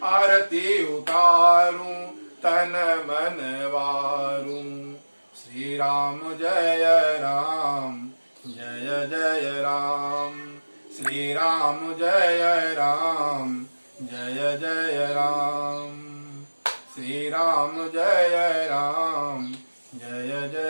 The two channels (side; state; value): both; inverted; correlation -1.00